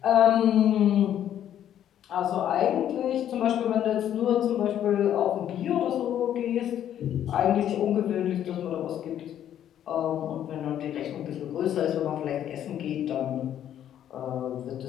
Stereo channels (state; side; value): quieter; right; 10.7 dB